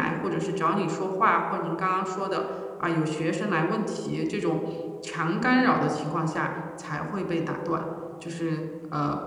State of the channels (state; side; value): identical; both; correlation 1.00